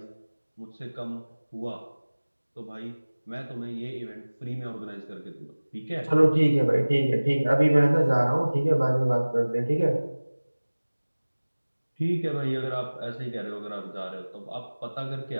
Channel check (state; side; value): inverted; both; correlation -1.00